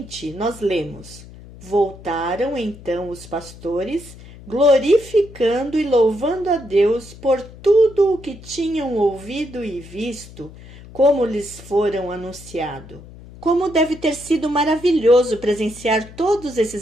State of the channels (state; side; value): noise; left; hum, 18 dB below the sound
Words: nós lemos: Voltaram então os pastores, glorificando e louvando a Deus por tudo o que tinham ouvido e visto, como lhes foram anunciado. Como deve ter sido maravilhoso presenciar todos